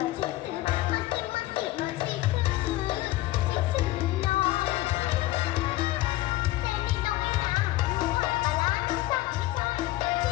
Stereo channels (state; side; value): quieter; right; 16.9 dB